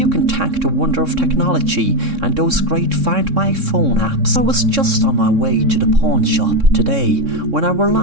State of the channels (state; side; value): late; left; 3.6 ms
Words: can thank the wonder of technology and those great Find My Phone apps. I was just on my way to the pawn shop today when I